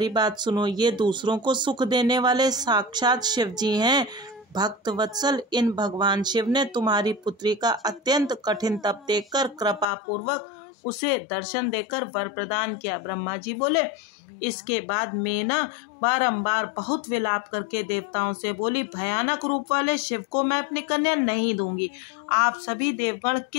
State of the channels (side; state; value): right; drops out; at 9.9 s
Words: बात सुनो। ये दूसरों को सुख देने वाले साक्षात शिव जी हैं। भक्त वत्सल, इन भगवान शिव ने तुम्हारी पुत्री का अत्यंत कठिन तप देखकर कृपा पूर्वक उसे दर्शन देकर वर प्रदान किया। ब्रह्मा जी बोले, इसके बाद मेना बारंबार बहुत विलाप करके देवताओं से बोली, भयानक रूप वाले शिव को मैं अपनी कन्या नहीं दूंगी। आप सभी देवगण